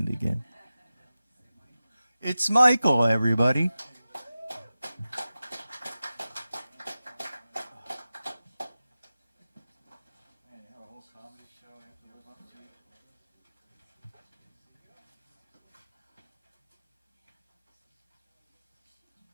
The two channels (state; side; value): inverted; both; correlation -0.95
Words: again. It's Michael, everybody.